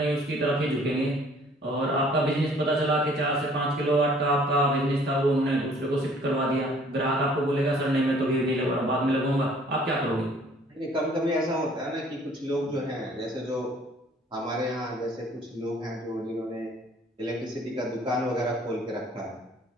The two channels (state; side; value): normal; both; correlation 0.56